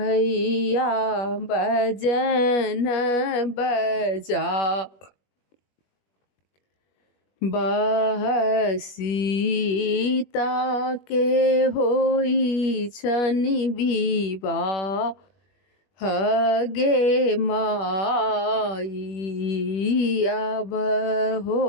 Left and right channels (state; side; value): late; right; 21 ms